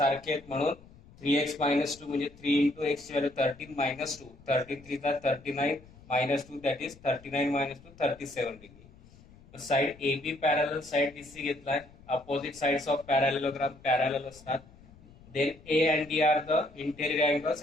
आहेत म्हणून 3x मायनस 2 म्हणजे 3 into x value 13 minus 2 13 3 39 minus 2 that is 39 minus 2 37 degree. Side A B parallel side BC घेतलाय. Opposite sides of parallelogram parallel असतात. Then A and D are the interior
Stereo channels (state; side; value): noise; left; rumble, 23 dB below the sound